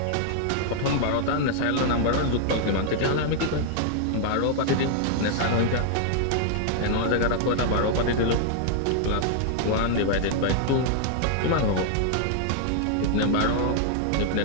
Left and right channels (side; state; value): both; different; correlation -0.01